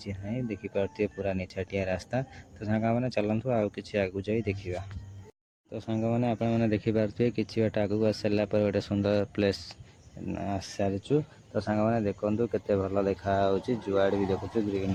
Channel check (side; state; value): both; identical; correlation 1.00